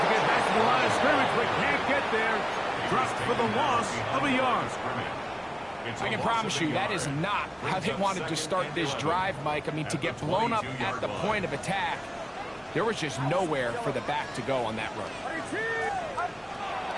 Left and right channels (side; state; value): both; identical; correlation 1.00